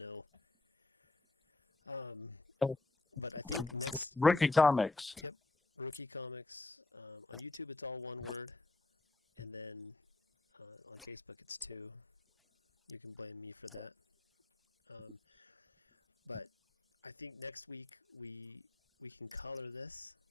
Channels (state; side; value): quieter; right; 3.0 dB